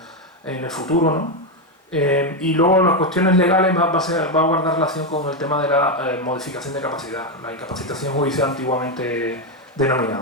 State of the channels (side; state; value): both; normal; correlation 0.07